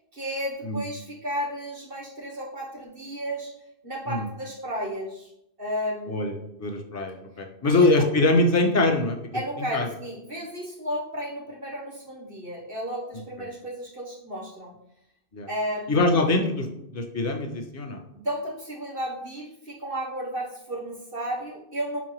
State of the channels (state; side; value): late; left; 2.6 ms